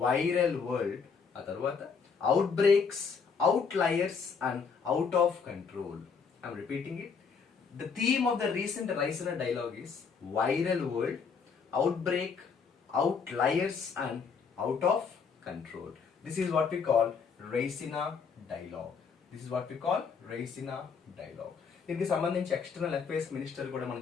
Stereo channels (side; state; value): right; quieter; 5.7 dB